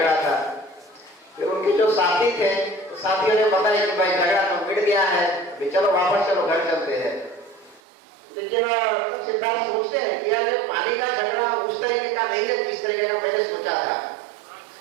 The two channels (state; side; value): drops out; left; at 7.8 s